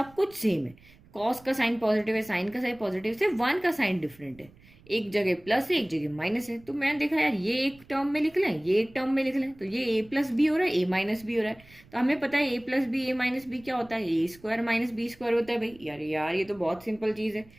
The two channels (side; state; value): right; noise; rumble, 26 dB below the sound